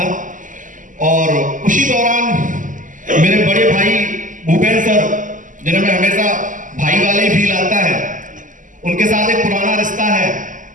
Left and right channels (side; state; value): left; late; 0.38 ms